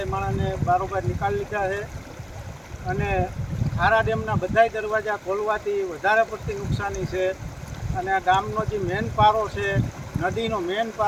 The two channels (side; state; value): both; identical; correlation 1.00